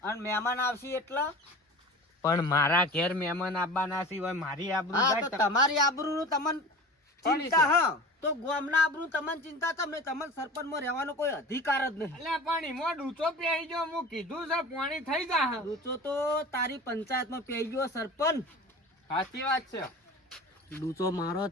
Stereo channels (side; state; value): both; normal; correlation 0.37